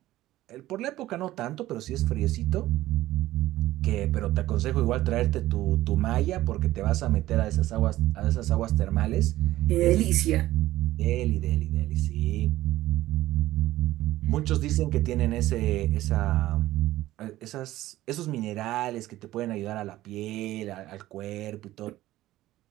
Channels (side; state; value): left; quieter; 15.6 dB